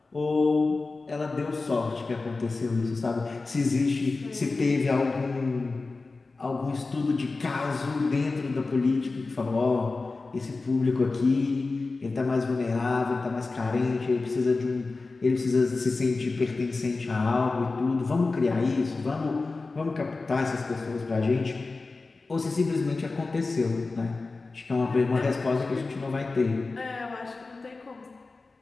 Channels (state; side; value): quieter; right; 3.7 dB